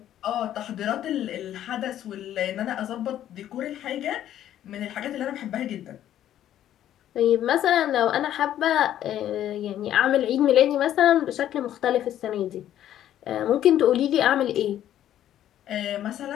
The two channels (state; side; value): quieter; right; 11.6 dB